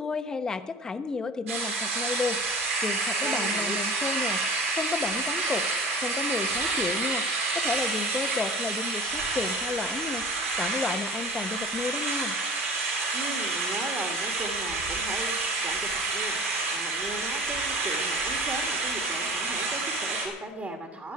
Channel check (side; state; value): both; normal; correlation 0.42